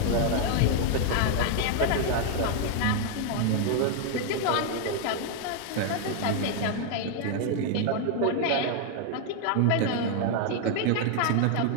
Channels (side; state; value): both; different; correlation 0.00